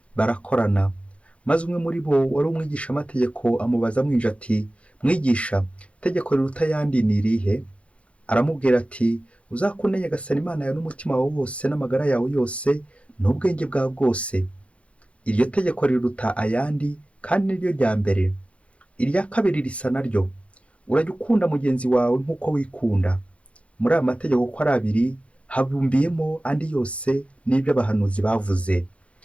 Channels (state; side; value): late; right; 0.062 ms